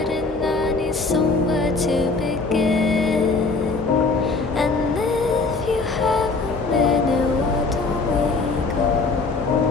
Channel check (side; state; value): right; quieter; 3.9 dB